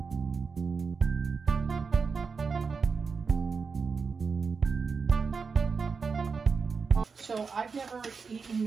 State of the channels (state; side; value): quieter; left; 5.1 dB